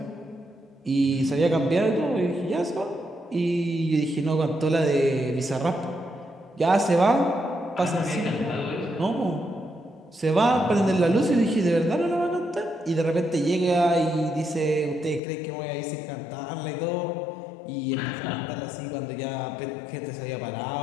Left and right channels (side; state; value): right; drops out; at 15.2 s